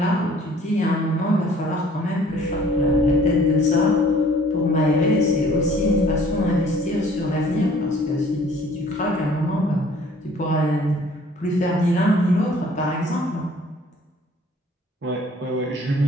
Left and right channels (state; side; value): normal; both; correlation 0.54